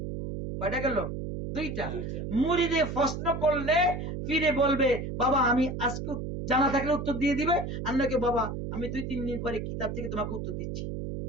কয়টা গেল? 2টা। দুইটা। মুরিদে প্রশ্ন করলে ফিরে বলবে, বাবা আমি আজকে জানা থাকলে উত্তর দিয়ে দিবে, আর নাকি বাবা আমি 2-3 দিন পরে কিতাব থেকে তোমাকে উত্তর দিচ্ছি।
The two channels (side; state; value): right; noise; hum, 5 dB below the sound